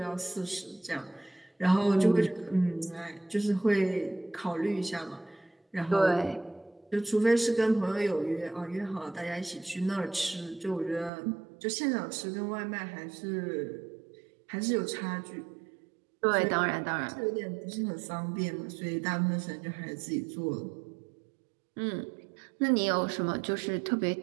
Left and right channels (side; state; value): left; drops out; at 11.1 s